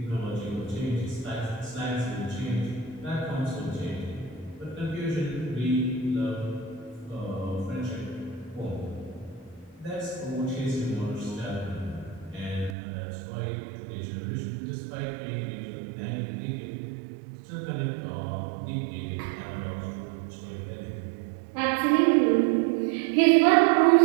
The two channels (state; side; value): drops out; left; at 12.8 s